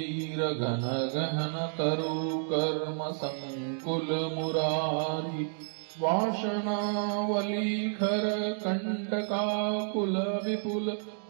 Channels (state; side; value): silent; left; digital silence